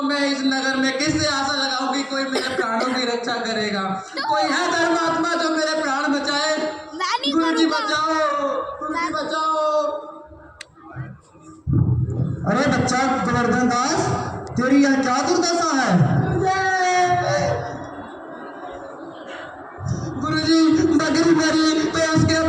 मैं इस नगर में किससे आशा लगाऊं कि कोई मेरे प्राणों की रक्षा करेगा? कोई है धर्मात्मा जो मेरे प्राण बचाए? गुरुजी बचाओ, गुरुजी बचाओ। अरे बच्चा गोवर्धन दास, तेरी यह क्या दुर्दशा है? गुरुजी बकरी मरी तो उसके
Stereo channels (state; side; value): identical; both; correlation 1.00